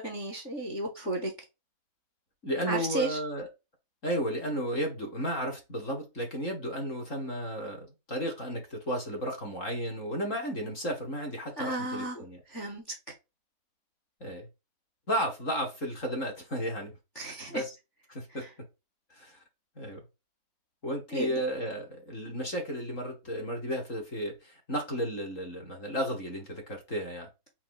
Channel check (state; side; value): late; right; 3.8 ms